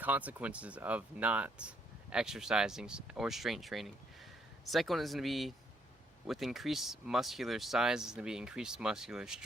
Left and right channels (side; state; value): both; normal; correlation 0.71